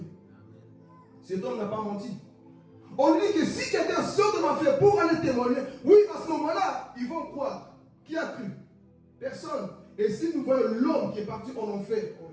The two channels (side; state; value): both; identical; correlation 1.00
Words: Cet homme n'a pas menti. On dit que si quelqu'un sort de l'enfer pour aller témoigner, oui, à ce moment-là, ils vont croire. Qui a cru? Personne. Et si nous voyons l'homme qui est parti en enfer, oh